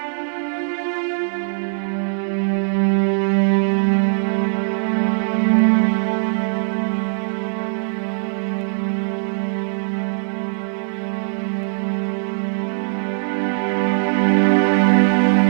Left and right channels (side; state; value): left; silent; digital silence